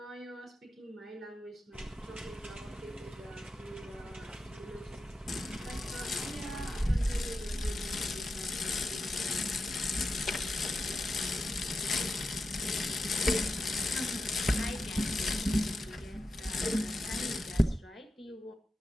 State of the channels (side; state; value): both; normal; correlation 0.90